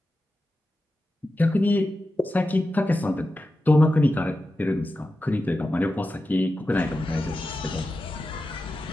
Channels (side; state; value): both; normal; correlation 0.92